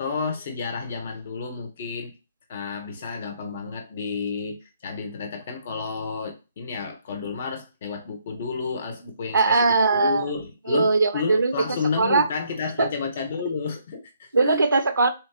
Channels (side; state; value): both; inverted; correlation -0.69